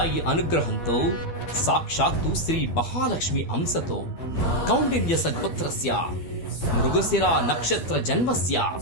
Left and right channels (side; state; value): right; late; 12 ms